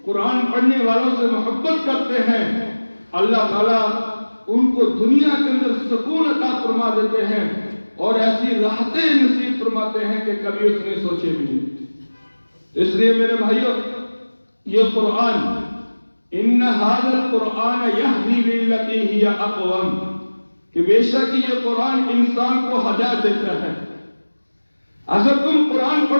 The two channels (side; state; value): both; inverted; correlation -1.00